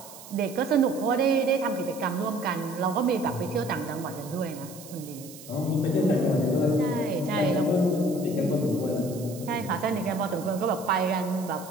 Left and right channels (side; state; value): right; noise; hiss, 17 dB below the sound